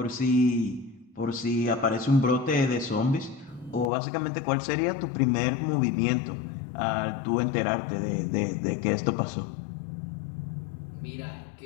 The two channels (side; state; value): right; drops out; at 3.9 s